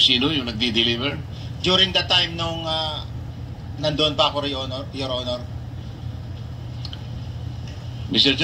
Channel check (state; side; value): identical; both; correlation 1.00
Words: yung nagdi-deliver? During the time nung nandoon pa ako, Your Honor. Mr.